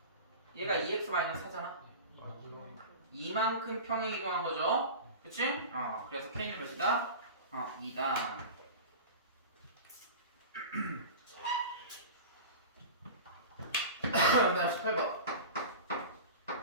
얘가 2x-4잖아. 이만큼 평행 이동한 거죠. 그치? 그래서 k는 몇이다? 2다. 그 다음 18번.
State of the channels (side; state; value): both; inverted; correlation -0.32